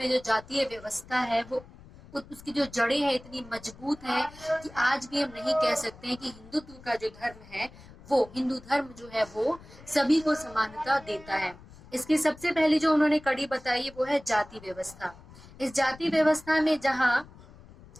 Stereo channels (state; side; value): noise; left; rumble, 21 dB below the sound